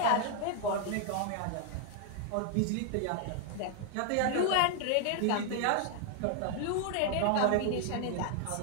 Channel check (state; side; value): different; both; correlation 0.00